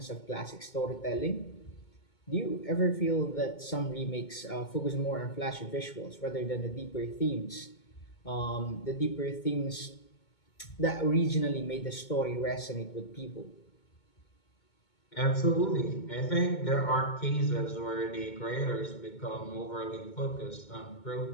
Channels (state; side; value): late; right; 2.2 ms